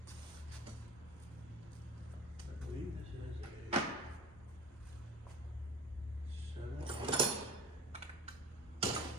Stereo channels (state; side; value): normal; both; correlation 0.38